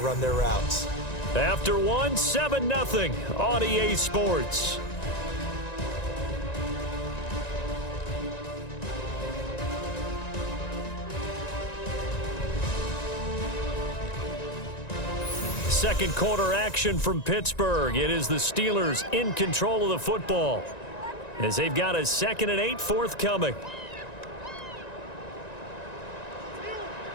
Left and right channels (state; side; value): late; right; 1.9 ms